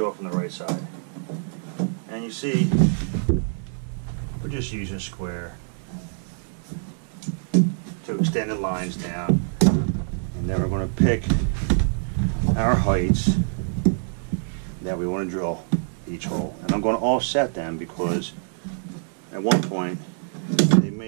the right side. And you see, we're just using a square to extend the lines down. And then we're going to pick our heights that we want to drill each hole. And I'm going to offset them because at one point they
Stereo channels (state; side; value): silent; left; digital silence